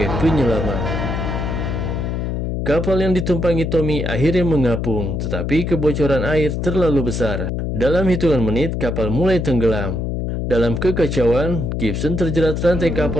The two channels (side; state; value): left; noise; hum, 2 dB below the sound